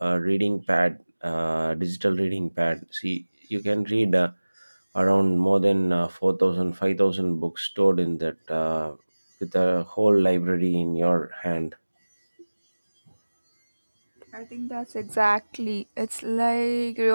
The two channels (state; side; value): inverted; both; correlation -1.00